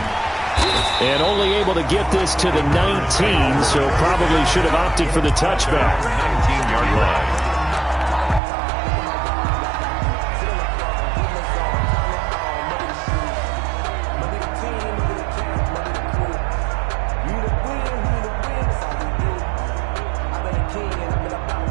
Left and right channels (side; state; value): left; drops out; at 8.4 s